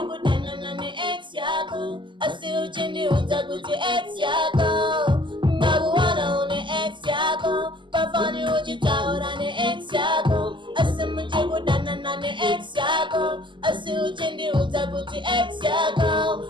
na ni ex yako. Asi uchindi utakuti ex yako. Nakuona une ex yako. Bafoni ujitaona ni ex yako. Asima chukudana na ni ex yako. Asi uchindi utakuti ex yako.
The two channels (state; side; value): late; left; 0.24 ms